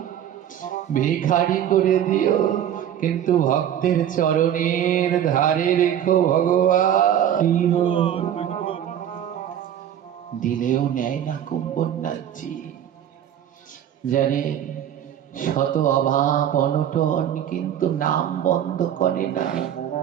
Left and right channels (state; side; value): quieter; left; 10.2 dB